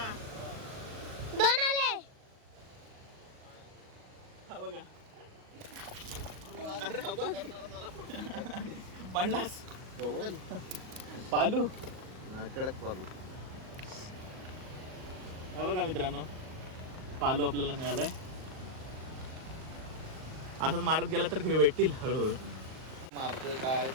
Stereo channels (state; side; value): late; left; 38 ms